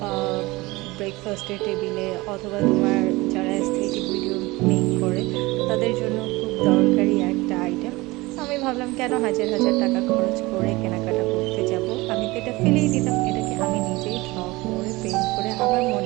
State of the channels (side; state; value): left; quieter; 21.6 dB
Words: ব্রেকফাস্টের টেবিলে অথবা তোমার যারা অ্যাস্থেটিক ভিডিও মেক করে তাদের জন্য খুব দরকারি একটা আইটেম। আমি ভাবলাম কেন হাজার হাজার টাকা খরচ করে কেনাকাটা করতে যাব, আমি তো এটা ফেলেই দিতাম, এটাকে আমি নিজেই ড্র করে পেইন্ট করে আমার